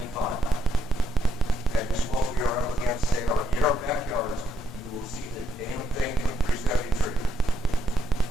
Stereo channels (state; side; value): normal; both; correlation 0.75